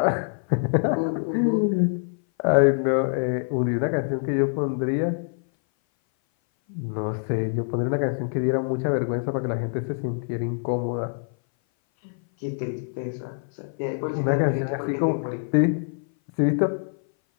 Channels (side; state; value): right; silent; 58 dB below the other